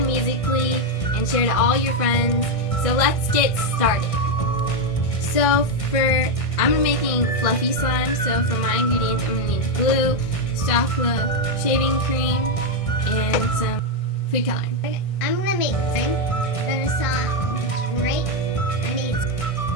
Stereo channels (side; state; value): right; late; 1.6 ms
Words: Musical.ly and share to all your friends. So let's get started. So I'm making fluffy slime. So for my ingredients, I'm gonna need glue, soft glue, shaving cream, and some food coloring. I'm gonna make slime. I'm gonna saw right. I need